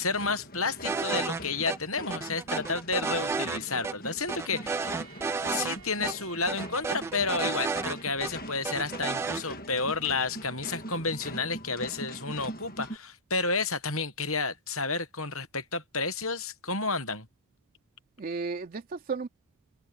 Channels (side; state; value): both; normal; correlation -0.11